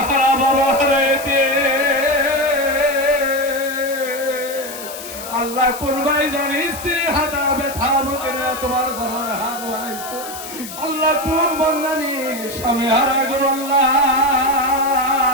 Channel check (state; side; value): noise; left; hiss, 12 dB below the sound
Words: হারা বাবা হারাইতে আল্লাহ কোন ভাই জানি স্ত্রী হাতা ব্যথা মুখে তোমার দরবারে হাত বাড়াইছে আল্লাহ কোন বন্দানি স্বামী হারা গো আল্লাহ